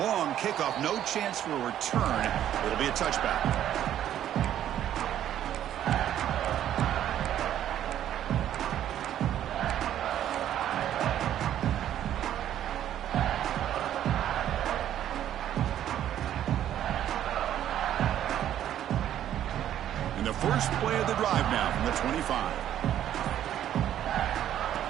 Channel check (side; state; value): left; quieter; 11.2 dB